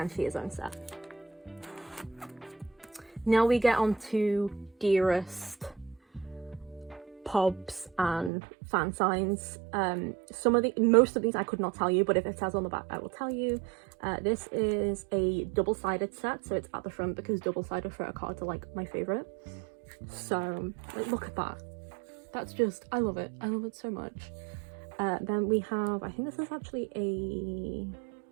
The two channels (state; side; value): drops out; left; at 8.3 s